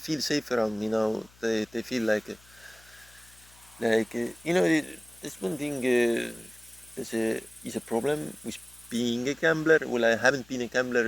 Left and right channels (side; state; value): left; noise; hum, 27 dB below the sound